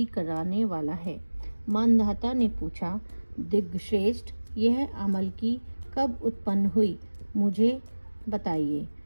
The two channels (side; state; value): both; inverted; correlation -1.00